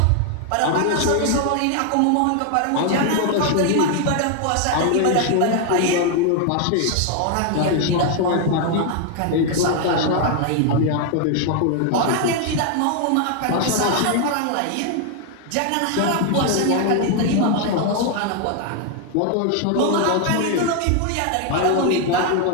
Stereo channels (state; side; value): different; both; correlation 0.00